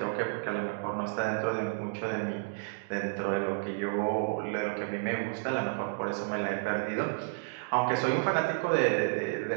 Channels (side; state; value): left; silent; digital silence